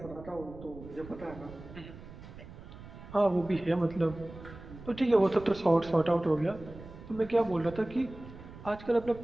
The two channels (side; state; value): right; noise; rumble, 15 dB below the sound